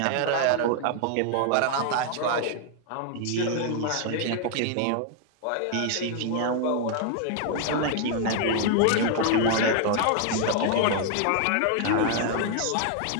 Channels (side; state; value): both; different; correlation 0.00